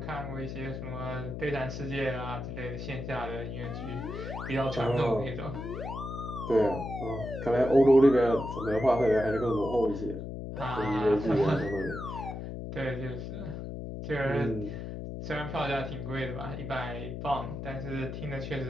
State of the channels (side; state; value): left; noise; hum, 7 dB below the sound